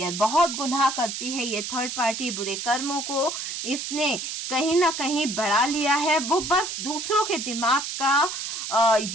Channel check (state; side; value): noise; right; hiss, 5 dB below the sound